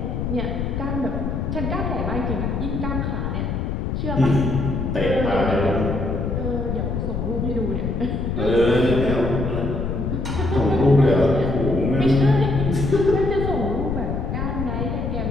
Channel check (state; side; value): noise; left; rumble, 2 dB below the sound